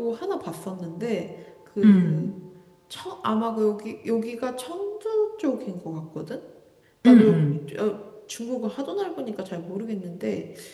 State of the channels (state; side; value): identical; both; correlation 1.00